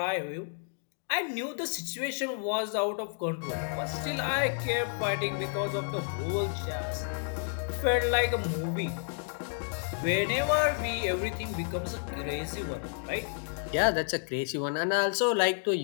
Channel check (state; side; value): silent; right; 56 dB below the other